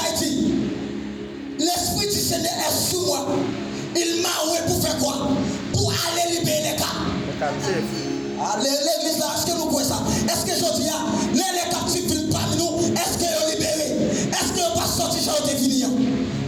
dit, l'Esprit du Seigneur est sous moi. Il m'a envoyé pour faire quoi? Pour aller libérer les captifs. L'église là, est-ce que nous croyons ça? Est-ce que je dis, les captifs viennent parmi nous? Est-ce qu'ils sont libérés? Est-ce qu'ils ne sont pas sortis chez eux de venir?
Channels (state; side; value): identical; both; correlation 1.00